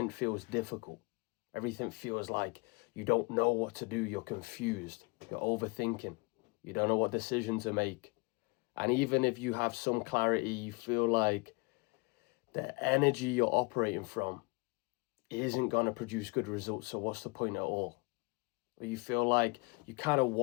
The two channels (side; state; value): right; quieter; 28.5 dB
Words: feels difficult. Everything feels like you don't know what to do. You're confused. You're overthinking. You don't know what decision to make. And even if you have some clarity, you feel like the energy you're operating from isn't going to produce good results. So what's the point at all? Or you feel like you kind of